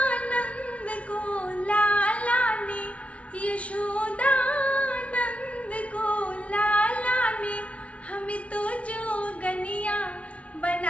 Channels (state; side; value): late; right; 0.063 ms